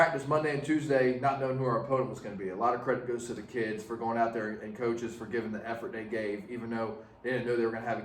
Monday and Tuesday, not knowing who our opponent was going to be. A lot of credit goes to the kids for going out there and coaches for giving the effort they gave, even though they didn't know they were going to have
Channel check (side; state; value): both; identical; correlation 1.00